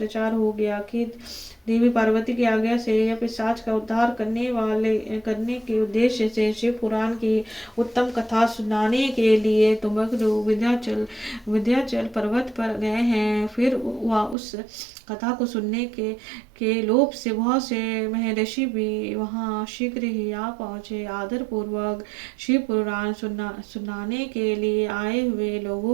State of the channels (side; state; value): left; drops out; at 14.4 s